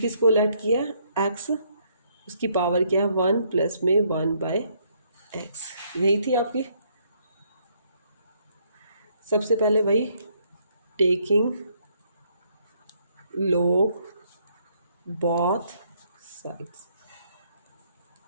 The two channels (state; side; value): inverted; both; correlation -0.70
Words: किसको लैट किया है? x, उसकी पावर क्या है? 1 प्लस में 1/x, यही थी आपकी। सबसे पहले वही taking log both sides,